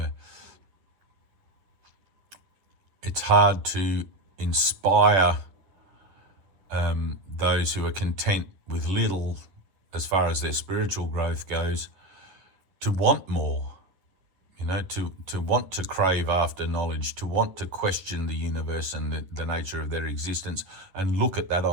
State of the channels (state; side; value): late; left; 10 ms